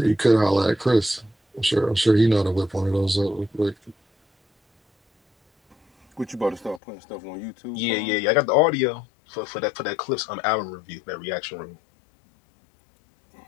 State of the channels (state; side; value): drops out; right; at 6.8 s